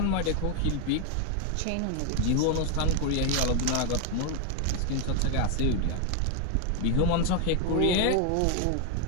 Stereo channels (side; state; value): both; different; correlation 0.01